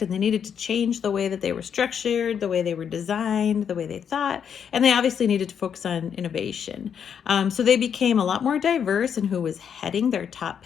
and they needed to change the way that they were structured, the way they were designed, the way they thought, and they obviously needed to focus on innovation. So they became a lot more diverse in who was heading their top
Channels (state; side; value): quieter; right; 7.8 dB